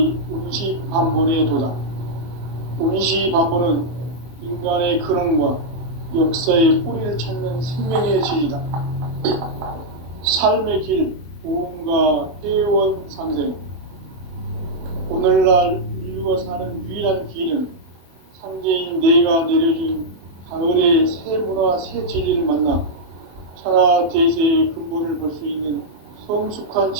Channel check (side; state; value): left; late; 24 ms